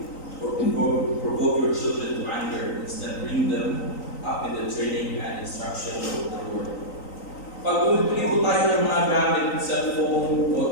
or provoke your children to anger, instead bring them up in the training and instruction of the Lord. Pag bumibili po tayo ng mga gamit, cellphone,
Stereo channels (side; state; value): right; late; 3.9 ms